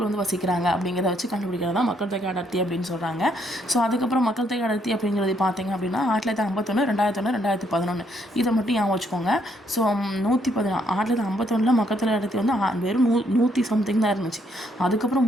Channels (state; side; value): normal; both; correlation 0.71